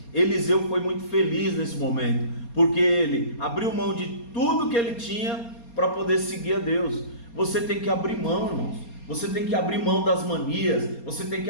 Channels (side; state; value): right; late; 4.3 ms